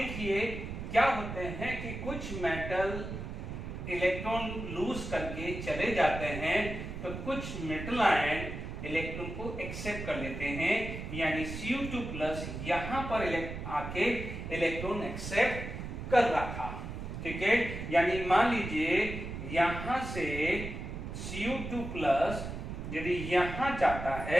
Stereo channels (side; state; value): right; noise; rumble, 7 dB below the sound